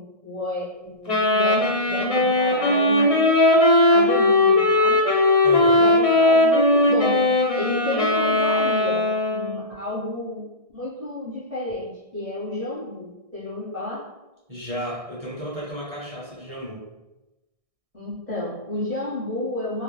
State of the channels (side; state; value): left; late; 1.6 ms